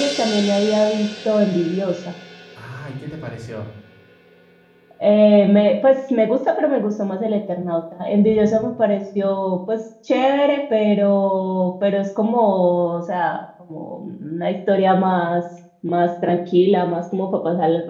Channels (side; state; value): both; identical; correlation 1.00